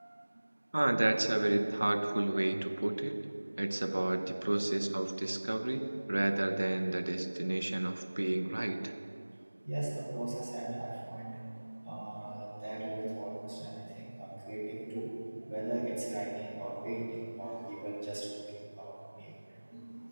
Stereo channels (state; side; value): inverted; both; correlation -1.00